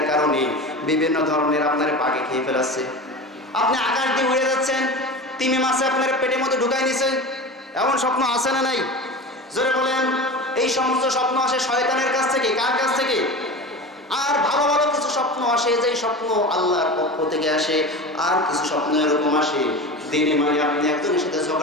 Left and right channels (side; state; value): both; normal; correlation 0.30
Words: কারণে বিভিন্ন ধরনের আপনার বাগে খেয়ে ফেলাচ্ছে। আপনি আকাশ দিয়ে উড়ে যাচ্ছেন, তিমি মাছে আপনার পেটের মধ্যে ঢুকাই নিছে, এমন স্বপ্ন আসে না নাই? জোরে বলেন। এই সমস্ত স্বপ্ন আসে শয়তানের কাছ থেকে। কার কাছ থেকে? আর ভালো ভালো কিছু স্বপ্ন আসে, যেই স্বপ্ন আল্লাহর পক্ষ থেকে আসে। আর কিছু স্বপ্ন এরকম আসে, দিনে মানে আপনি একজনের সাথে